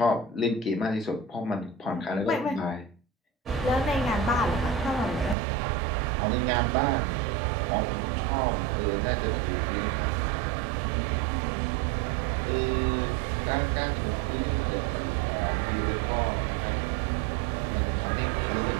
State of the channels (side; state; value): left; drops out; at 5.4 s